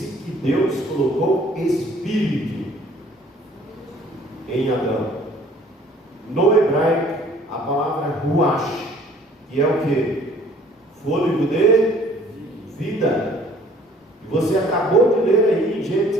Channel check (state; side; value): normal; both; correlation 0.55